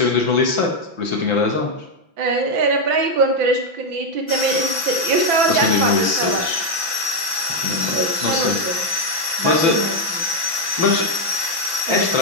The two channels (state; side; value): late; left; 6.0 ms